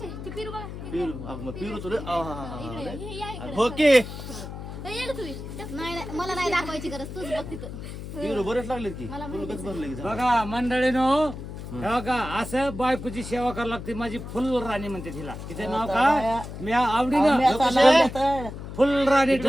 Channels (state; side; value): noise; left; hum, 10 dB below the sound